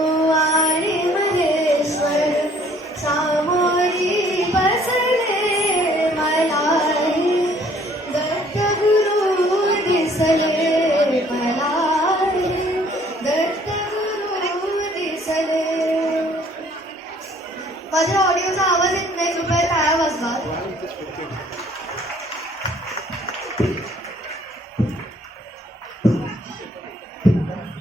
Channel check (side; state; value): both; normal; correlation 0.59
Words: माझ्या ऑडिओचा आवाज येत नाही, कृपया टाळ्या वाजवा.